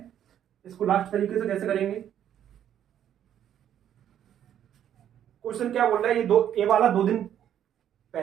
इसको लास्ट तरीके से कैसे करेंगे, क्वेश्चन क्या बोल रहा है, ये दो ए वाला 2 दिन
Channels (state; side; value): quieter; left; 10.2 dB